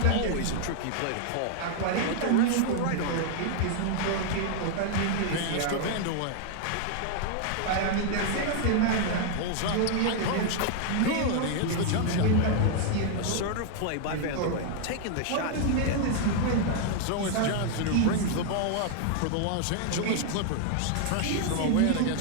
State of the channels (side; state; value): both; different; correlation 0.00